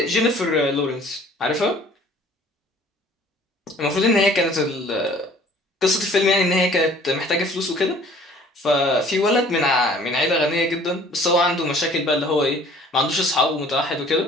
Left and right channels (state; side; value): normal; both; correlation 0.53